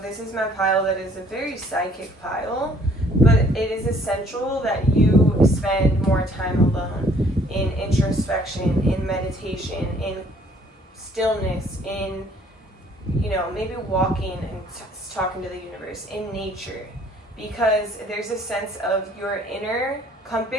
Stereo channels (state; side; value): normal; both; correlation 0.60